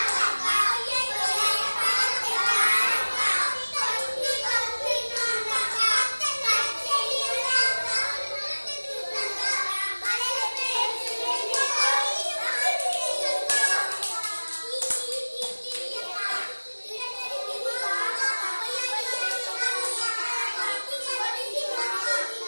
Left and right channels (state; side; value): inverted; both; correlation -1.00